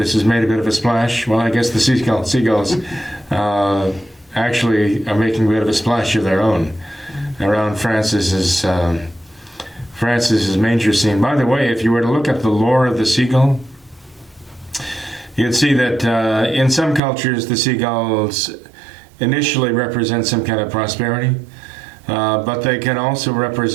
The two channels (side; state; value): left; drops out; at 17.0 s